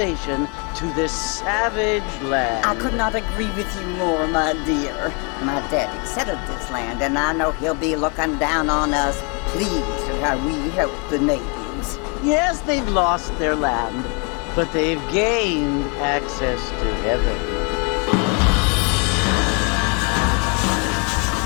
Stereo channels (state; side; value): quieter; right; 34.1 dB